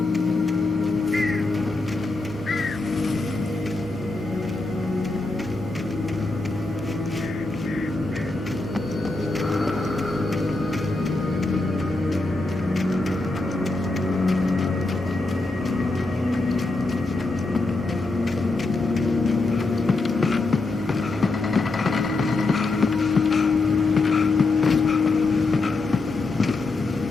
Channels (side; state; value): right; quieter; 3.3 dB